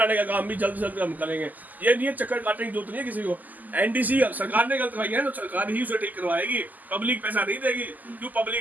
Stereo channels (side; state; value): left; late; 0.082 ms